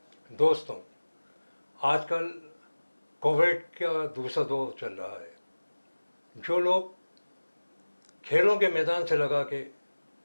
दोस्तों, आजकल कोविड का दूसरा दौर चल रहा है। जो लोग खेलों के मैदान से लगा के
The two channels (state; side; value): inverted; both; correlation -1.00